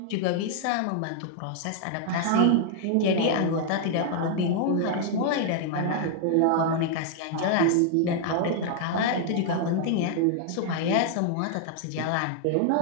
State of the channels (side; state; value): both; different; correlation 0.00